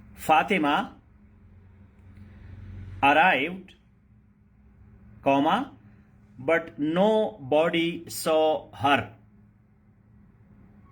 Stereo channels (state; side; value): identical; both; correlation 1.00